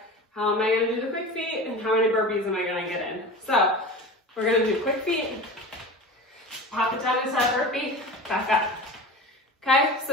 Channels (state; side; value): normal; both; correlation 0.33